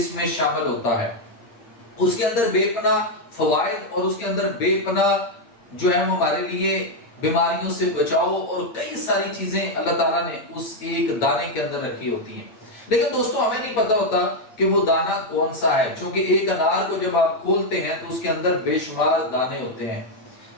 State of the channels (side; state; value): right; late; 8.6 ms